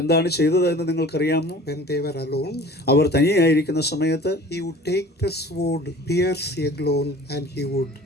എന്താണ് ചെയ്തത് എന്ന് നിങ്ങൾക്കറിയാമോ? When they were alone, അവർ തനിയായിരിക്കുന്ന സമയത്ത് he would take the sword, pierce Eglon, and he would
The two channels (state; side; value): normal; both; correlation 0.45